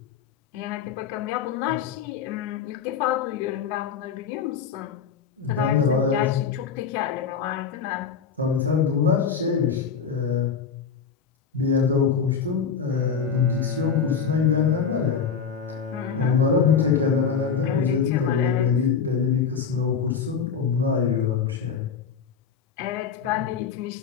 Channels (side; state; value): right; quieter; 6.5 dB